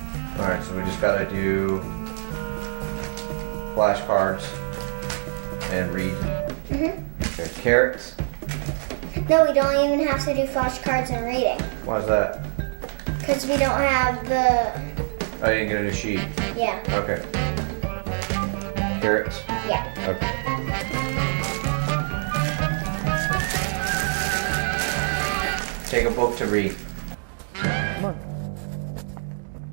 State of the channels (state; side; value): silent; left; 62 dB below the other